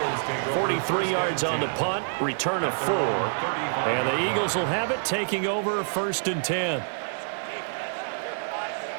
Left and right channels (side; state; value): left; silent; 60 dB below the other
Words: 43 yards on the punt, return of 4. And the Eagles will have it, taking over 1st and 10.